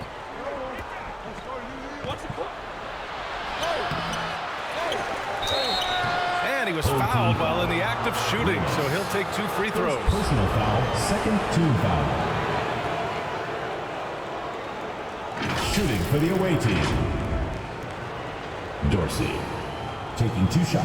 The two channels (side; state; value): both; identical; correlation 1.00